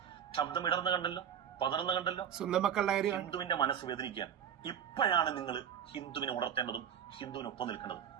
ശബ്ദം ഇടർന്ന് കണ്ടല്ലോ, പതർന്ന് കണ്ടല്ലോ. സ്വന്തം മക്കളുടെ ഹിന്ദുവിന്റെ മനസ്സ് വേദനിക്കാൻ ഇപ്പോഴാണ് നിങ്ങൾ ഹിന്ദുവിനെ ഉണർത്തേണ്ടതും ഹിന്ദുവിനൊപ്പം നിൽക്കേണ്ടതും.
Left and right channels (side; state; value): left; quieter; 8.9 dB